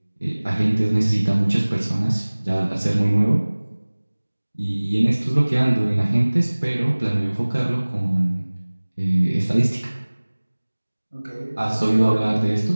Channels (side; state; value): both; inverted; correlation -1.00